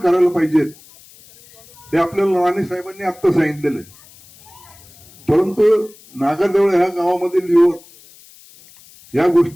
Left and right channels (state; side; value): noise; left; hiss, 24 dB below the sound